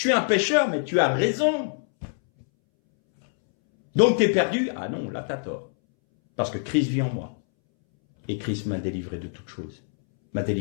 suis un pécheur, mais tu as raison. Donc t'es perdu? Ah non, là t'as tort. Parce que Christ vit en moi. Et Christ m'a délivré de toutes choses. M'a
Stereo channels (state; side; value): silent; right; 62 dB below the other